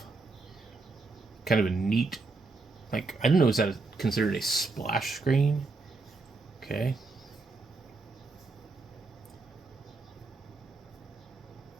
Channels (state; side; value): quieter; left; 3.7 dB